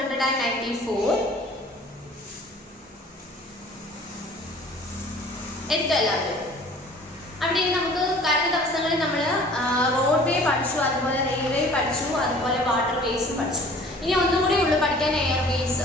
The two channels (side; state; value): both; normal; correlation 0.49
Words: എടുക്കുക എല്ലാവരും. അവിടെ നമുക്ക് കഴിഞ്ഞ ദിവസങ്ങളിൽ നമ്മൾ റോഡ് വേ പഠിച്ചു, അതുപോലെ റെയിൽവേ പഠിച്ചു, അതുപോലെ വാട്ടർ വേസ് പഠിച്ചു. ഇനി ഒന്നും കൂടി ഉള്ളു പഠിക്കാൻ എയർവേസ്.